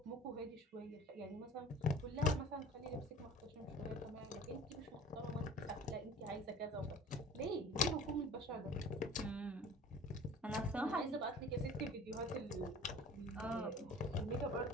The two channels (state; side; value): normal; both; correlation 0.45